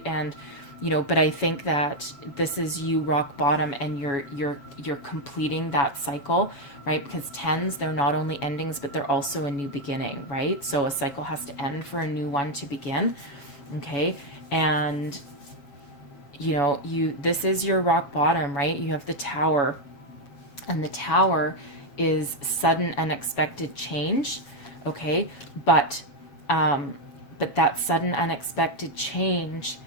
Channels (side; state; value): right; late; 7.1 ms